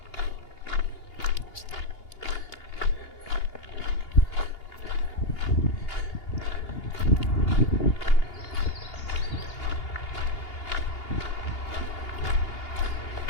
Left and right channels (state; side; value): late; right; 2.8 ms